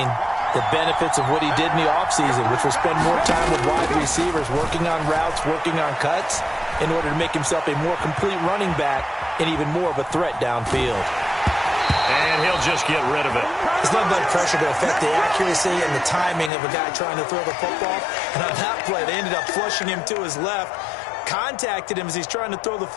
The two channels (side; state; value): right; drops out; at 16.5 s